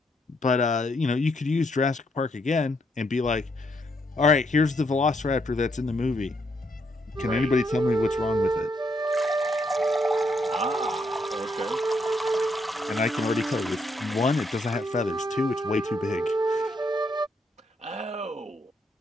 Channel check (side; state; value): both; normal; correlation 0.75